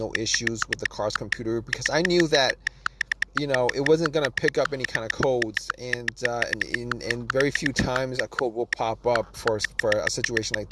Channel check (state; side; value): identical; both; correlation 1.00